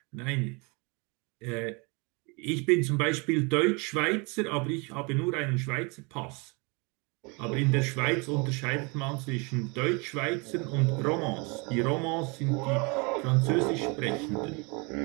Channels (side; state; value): left; quieter; 30.1 dB